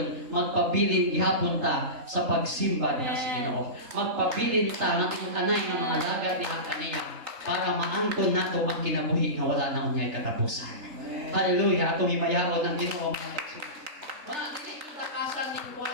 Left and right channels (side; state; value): left; late; 3.3 ms